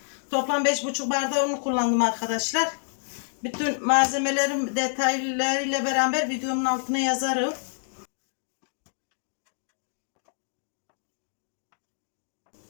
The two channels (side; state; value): right; silent; digital silence